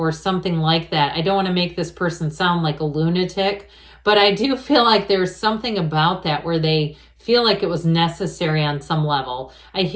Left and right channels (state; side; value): identical; both; correlation 1.00